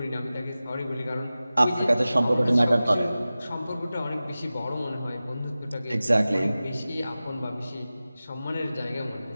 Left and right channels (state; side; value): inverted; both; correlation -0.96